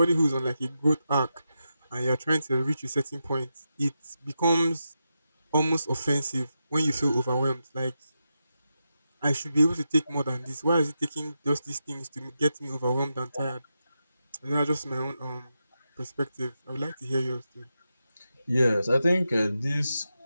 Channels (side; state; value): both; inverted; correlation -0.88